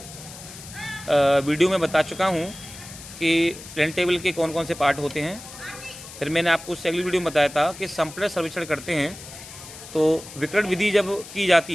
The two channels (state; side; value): noise; left; hiss, 15 dB below the sound